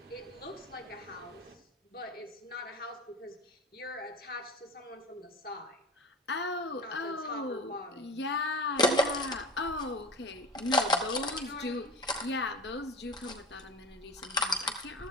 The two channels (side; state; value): both; normal; correlation 0.33